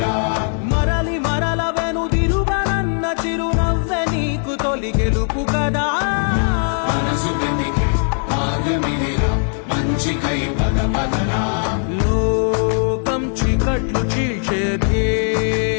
మరలి మరల వెనుదిరుగనన్న చిరునవ్వె నీకు తొలి గెలుపు కదా మనసు వెతికే మార్గమిదిరా మంచికై పదపదరా లోకం చీకట్లు చీల్చే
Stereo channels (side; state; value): right; silent; 55 dB below the other